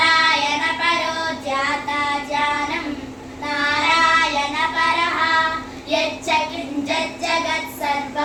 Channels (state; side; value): identical; both; correlation 1.00